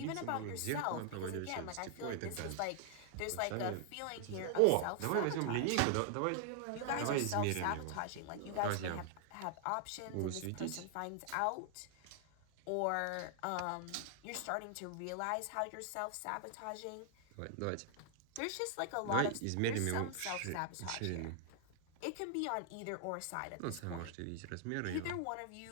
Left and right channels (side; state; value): both; different; correlation 0.00